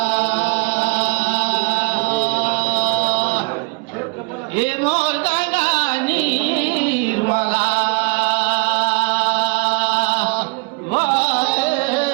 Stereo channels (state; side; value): quieter; left; 30.0 dB